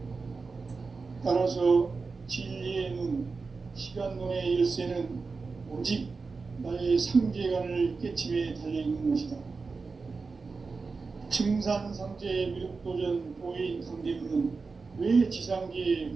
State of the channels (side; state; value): left; quieter; 4.4 dB